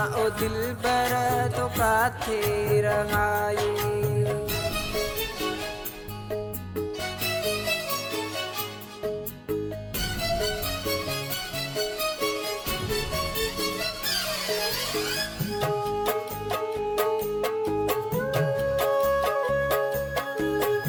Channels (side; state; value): both; identical; correlation 1.00